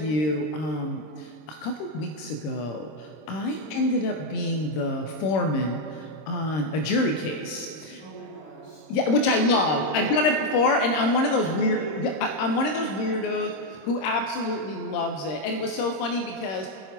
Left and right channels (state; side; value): late; right; 26 ms